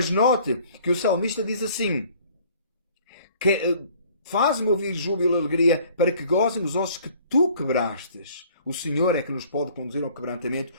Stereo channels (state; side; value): inverted; both; correlation -0.55